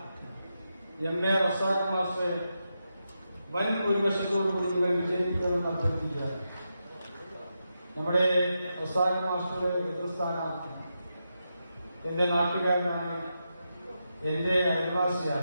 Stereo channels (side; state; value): both; inverted; correlation -0.87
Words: MA റസാഖ് മാസ്റ്റർ വൻ ഭൂരിപക്ഷത്തോടുകൂടി നിങ്ങൾ വിജയിക്കുമെന്ന് അഭ്യർത്ഥിക്കുക. നമ്മുടെ റസാഖ് മാസ്റ്ററുടെ എതിർസ്ഥാനാർത്ഥി എന്റെ നാട്ടുകാരനാണ്, എന്റെ